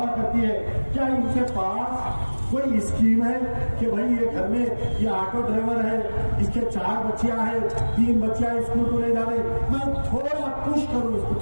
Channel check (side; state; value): both; inverted; correlation -1.00